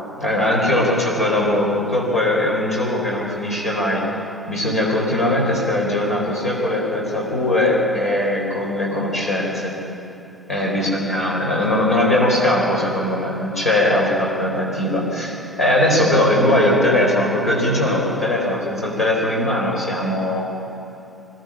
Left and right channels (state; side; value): normal; both; correlation 0.35